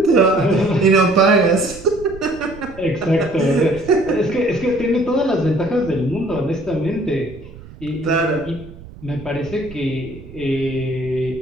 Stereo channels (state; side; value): noise; right; rumble, 17 dB below the sound